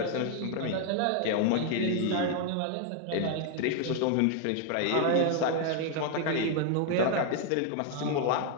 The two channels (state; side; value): different; both; correlation 0.00